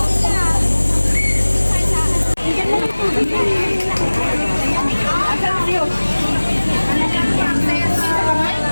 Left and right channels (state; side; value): inverted; both; correlation -1.00